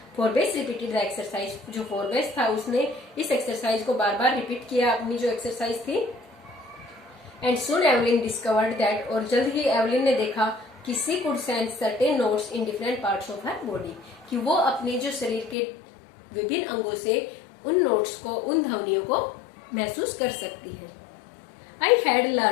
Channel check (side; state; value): right; drops out; at 15.6 s